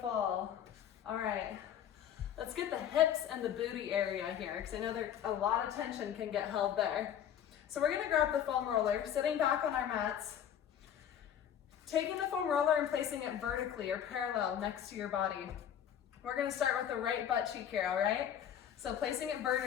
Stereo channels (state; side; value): quieter; right; 9.6 dB